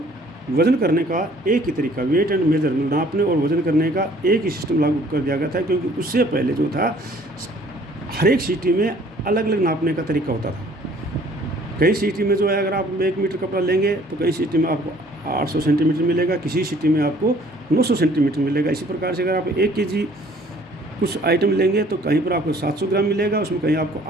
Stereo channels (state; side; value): normal; both; correlation 0.57